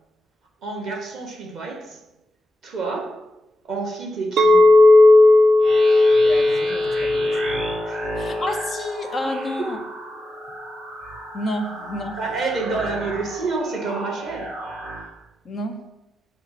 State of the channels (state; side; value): normal; both; correlation 0.91